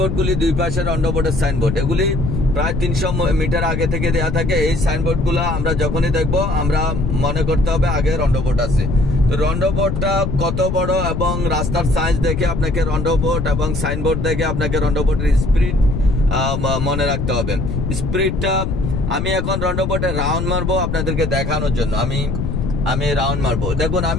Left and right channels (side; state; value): left; noise; rumble, 2 dB below the sound